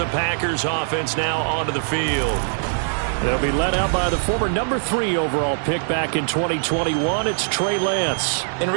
Packers offense now onto the field. They'll be led out by the former number 3 overall pick back in 2021. It's Trey Lance. In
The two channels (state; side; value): silent; left; digital silence